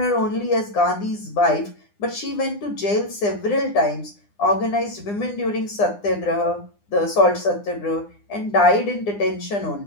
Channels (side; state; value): right; late; 9.8 ms